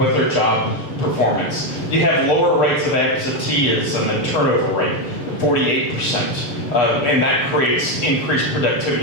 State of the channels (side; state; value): right; late; 6.7 ms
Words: their job performance. You have lower rates of absenteeism and turnover rate, 48%. And that creates increased